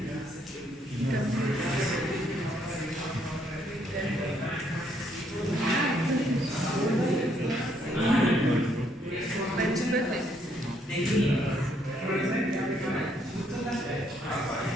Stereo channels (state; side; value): normal; both; correlation 0.71